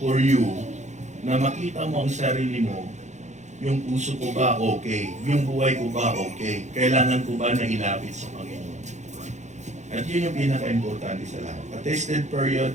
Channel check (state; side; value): late; left; 0.34 ms